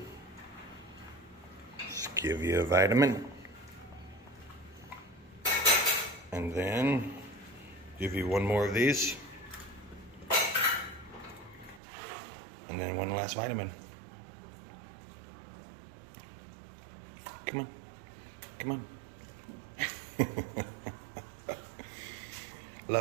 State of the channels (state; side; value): drops out; left; at 11.8 s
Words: Let's give you a vitamin. And then give you 1 more of these. And then 1 last vitamin. Come on. Come on.